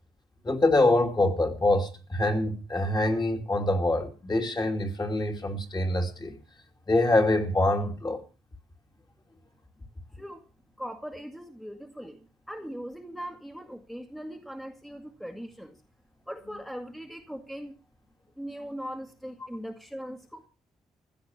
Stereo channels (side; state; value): both; normal; correlation 0.82